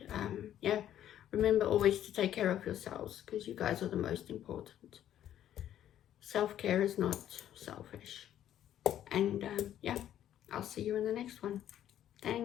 yeah, remember always to take care of yourselves because you guys are the most important. Self-care is not selfish. And yeah, I'll see you in the next one.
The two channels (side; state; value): right; quieter; 11.2 dB